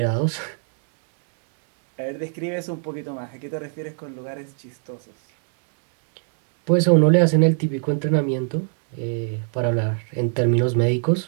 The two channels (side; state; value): left; silent; 59 dB below the other